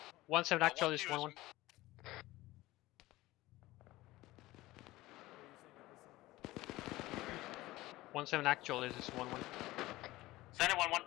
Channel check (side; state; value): right; quieter; 18.3 dB